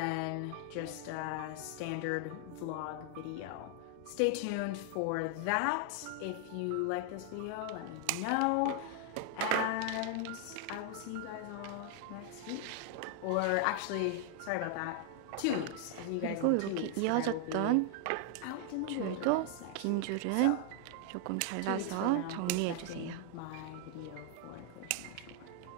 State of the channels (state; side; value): different; both; correlation 0.00